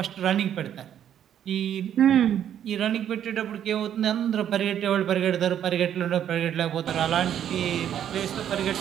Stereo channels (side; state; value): left; quieter; 9.9 dB